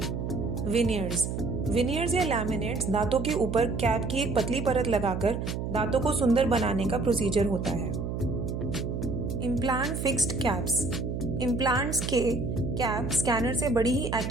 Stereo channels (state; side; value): noise; right; hum, 3 dB below the sound